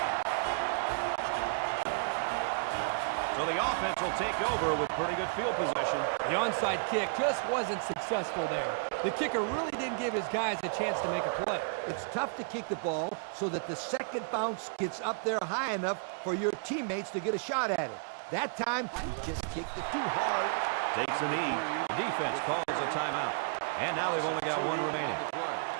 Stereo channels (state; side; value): quieter; left; 39.8 dB